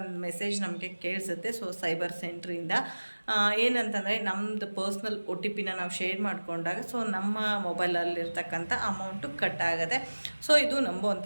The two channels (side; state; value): both; inverted; correlation -1.00